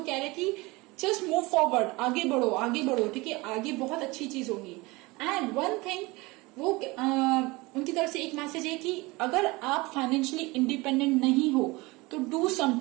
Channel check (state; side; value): quieter; left; 23.2 dB